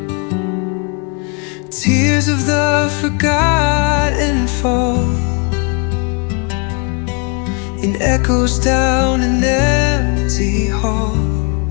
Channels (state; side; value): quieter; right; 34.1 dB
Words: Tears of the forgotten fall in echoes down an empty hall.